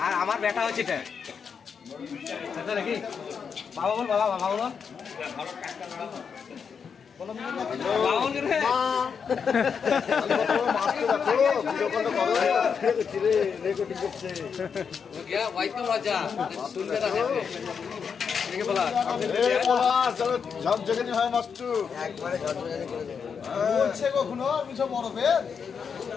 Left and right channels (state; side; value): quieter; right; 6.4 dB